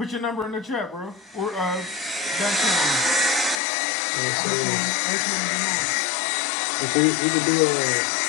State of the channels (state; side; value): drops out; right; at 3.6 s